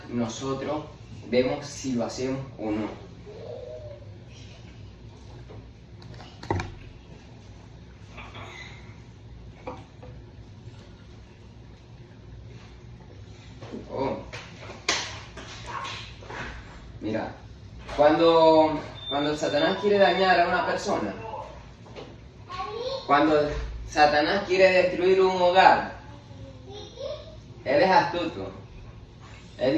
nosotros vemos si lo hacemos o no. Mira, cuando Satanás quiere dañar a una persona, cuando Satanás quiere destruir un hogar, él es astuto. Él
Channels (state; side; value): identical; both; correlation 1.00